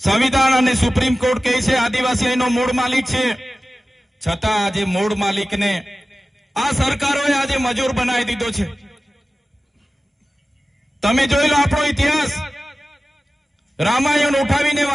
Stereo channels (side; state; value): both; normal; correlation 0.95